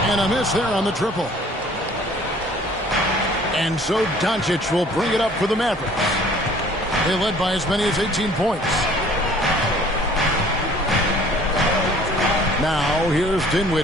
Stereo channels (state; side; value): normal; both; correlation 0.53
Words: And a miss there on the triple. And so Doncic will bring it up for the Mavericks. They led by as many as 18 points. Now here's